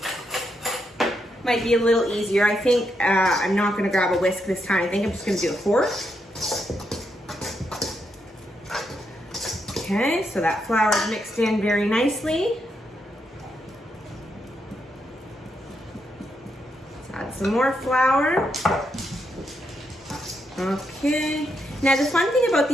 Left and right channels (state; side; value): normal; both; correlation 0.81